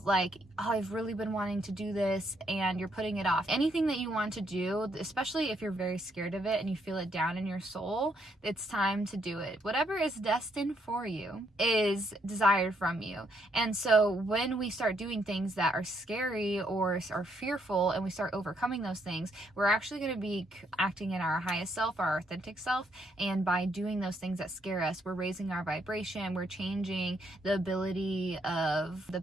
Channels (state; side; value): normal; both; correlation 0.73